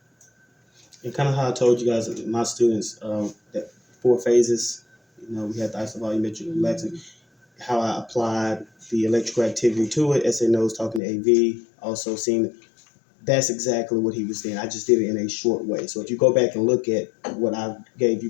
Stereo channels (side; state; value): right; drops out; at 11.0 s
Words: And kind of how I told you guys, my students, that 4 phases, you know, we had the isovolumetric relaxing, how I applied the electrical activity to it. SNO was talking to AV, also seeing that's exactly what he was saying. I just did it in a short way. So if you go back and look at what I gave you